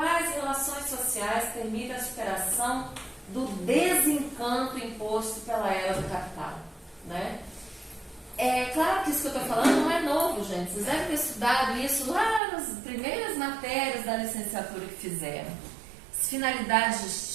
relações sociais permitem a superação do desencanto imposto pela era do capital, né? É claro que isso que eu estou falando não é novo, gente. Vocês devem ter estudado isso lá nas primeiras matérias da licenciatura que fizeram. As finalidades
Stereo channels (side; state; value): left; drops out; at 12.4 s